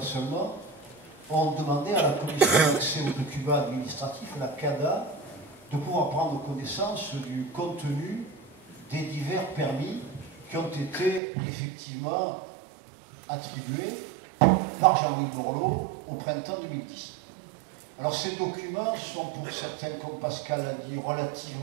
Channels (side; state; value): left; drops out; at 11.2 s